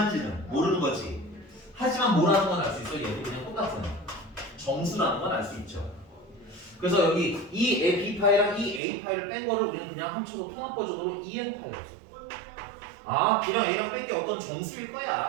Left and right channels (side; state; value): left; drops out; at 8.8 s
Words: 모르는 거지. 하지만 뭐라는 건 알 수 있어. 얘도 그냥 똑같은 정수라는 건 알 수 있죠. 그래서 여기 이 B파이랑 이 A파이를 뺀 거를 우리는 그냥 합쳐서 통합 버전으로 EN파이라고 써. 아, B랑 A랑 뺀 게 어떤 정수일